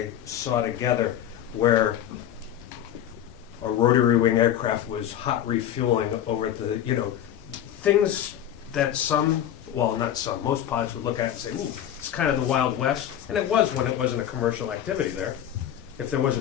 saw together where a rotary wing aircraft was hot refueling over at the, you know, things that most pilots would look at and say, ooh, it's kind of the Wild West. And it was when it wasn't a commercial activity there. If there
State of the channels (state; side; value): quieter; right; 10.8 dB